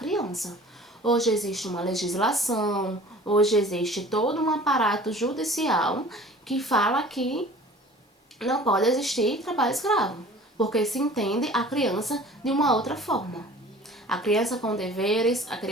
Hoje existe uma legislação, hoje existe todo um aparato judicial que fala que não pode existir trabalho escravo, porque se entende a criança de uma outra forma. A criança com deveres, a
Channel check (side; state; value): both; normal; correlation 0.45